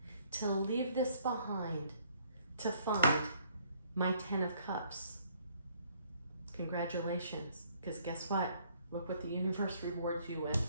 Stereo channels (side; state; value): both; inverted; correlation -0.64